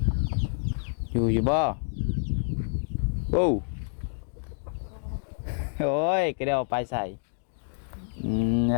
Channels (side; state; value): right; silent; digital silence